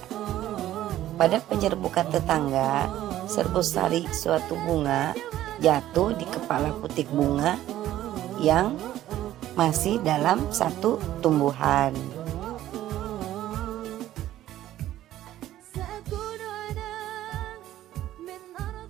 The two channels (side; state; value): left; quieter; 13.4 dB